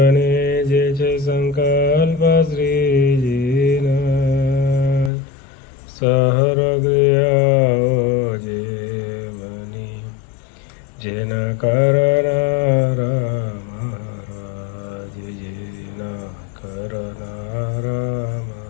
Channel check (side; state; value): right; drops out; at 5.1 s